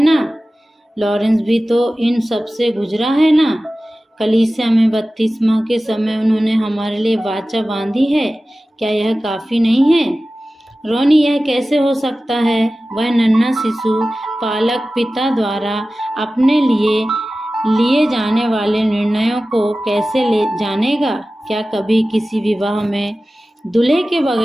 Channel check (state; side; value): normal; both; correlation 0.96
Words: ना। लॉरेंस भी तो इन सब से गुजरा है ना। कलीसिया में बपतिस्मा के समय उन्होंने हमारे लिए वाचा बांधी है। क्या यह काफी नहीं है? रोनी, यह कैसे हो सकता है? वह नन्हा शिशु पालक पिता द्वारा अपने लिए जाने वाले निर्णयों को कैसे ले जानेगा? क्या कभी किसी विवाह में दूल्हे के